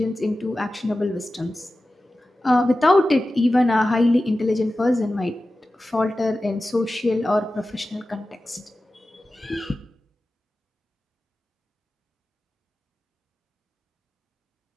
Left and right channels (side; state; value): both; normal; correlation 0.95